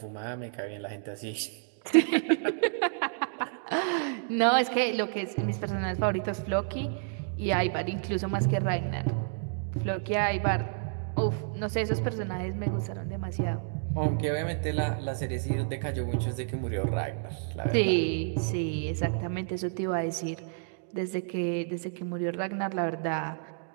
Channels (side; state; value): left; silent; digital silence